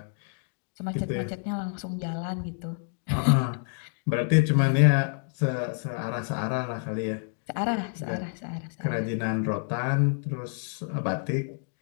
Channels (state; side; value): silent; right; 59 dB below the other